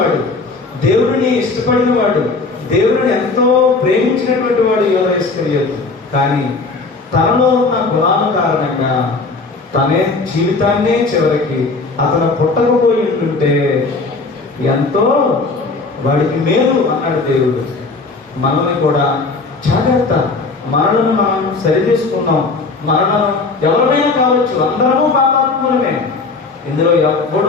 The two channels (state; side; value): quieter; right; 3.9 dB